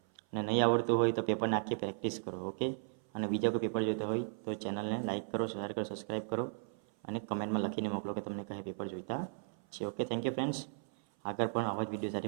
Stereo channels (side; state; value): left; silent; 54 dB below the other